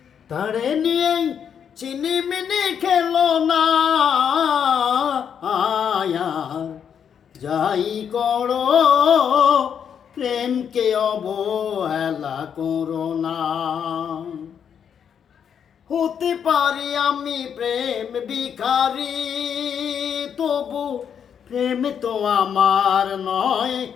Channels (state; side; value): quieter; right; 7.9 dB